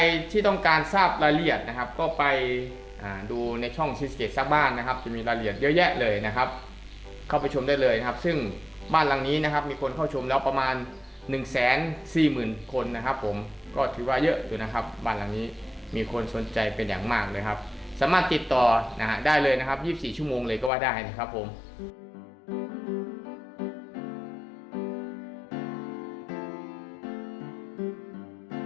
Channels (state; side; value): drops out; right; at 20.7 s